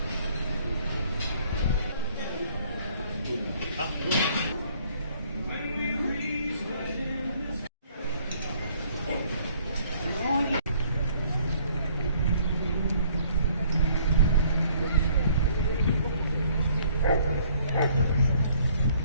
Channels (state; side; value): inverted; both; correlation -0.61